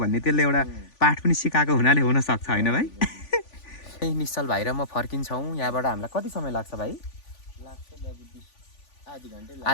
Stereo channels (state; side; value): late; right; 3.5 ms